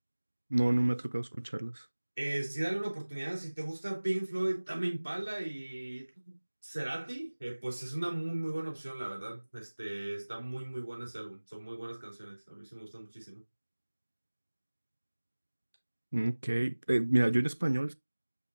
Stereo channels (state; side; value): inverted; both; correlation -1.00